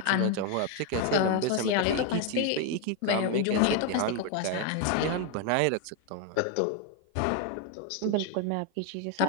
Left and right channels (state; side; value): different; both; correlation 0.01